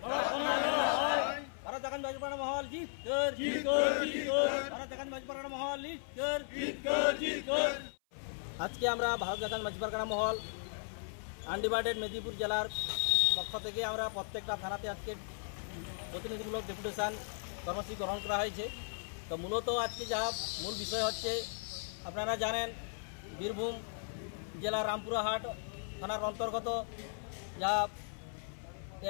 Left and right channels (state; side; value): silent; right; 53 dB below the other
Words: আজকে আমরা ভারত জাকাত মাঝি পারগানা মহল আনডিভাইডেড মেদিনীপুর জেলার পক্ষ থেকে আমরা প্রত্যেকটা থানাতে আজকে প্রতিনিধিমূলক ডেপুটেশন কর্মসূচি গ্রহণ করা হয়েছে। তো মূলত আজকে যা মূল বিষয় হচ্ছে, আপনারা জানেন বীরভূম জেলার রামপুরহাট থানার অন্তর্গত যা